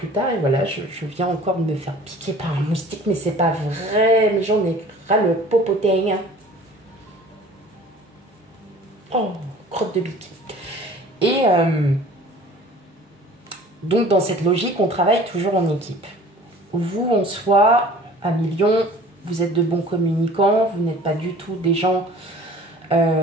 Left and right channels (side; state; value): both; normal; correlation 0.47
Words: tard. Et voilà, je viens encore de me faire piquer par un moustique, mais c'est pas vrai, mais j'en ai ras le popotin. Oh, crotte de bique. Et donc dans cette logique, on travaille toujours en équipe. Vous, en soi, à millions, vous êtes de bons communicants, vous n'êtes pas du tout des gens,